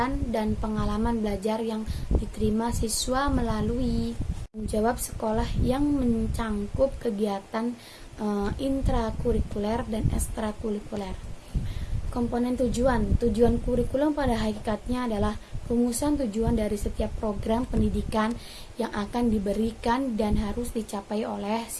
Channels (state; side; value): identical; both; correlation 1.00